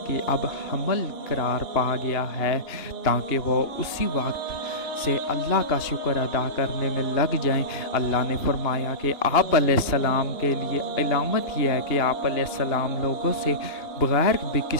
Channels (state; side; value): late; right; 2.9 ms